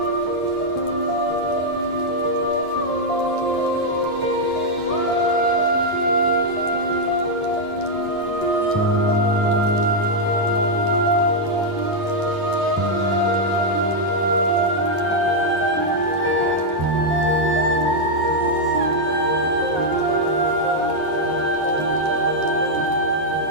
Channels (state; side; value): late; right; 9.6 ms